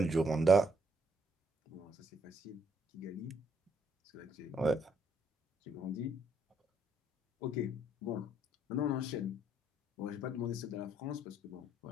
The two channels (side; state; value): both; normal; correlation 0.70